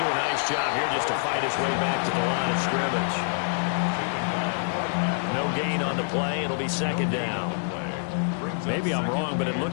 do a nice job here just to fight his way back to the line of scrimmage. No gain on the play. It'll be 2nd down. Maybe I'm wrong, but it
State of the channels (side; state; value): right; silent; digital silence